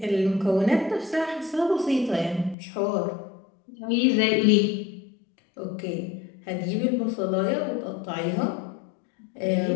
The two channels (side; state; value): right; drops out; at 2.6 s